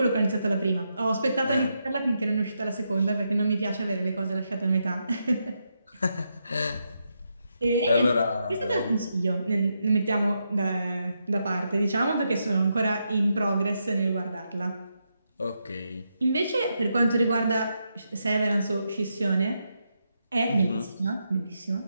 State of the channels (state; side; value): inverted; both; correlation -0.83